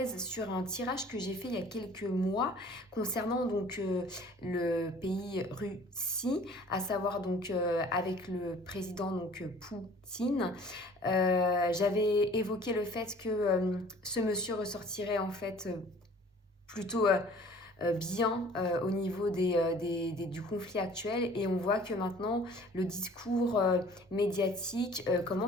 sur un tirage que j'ai fait il y a quelques mois concernant le pays Russie, à savoir avec le président Poutine. J'avais évoqué le fait que ce monsieur ressortirait en fait plutôt bien au niveau du conflit actuel, et on voit que maintenant le discours médiatique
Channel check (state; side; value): normal; both; correlation 0.50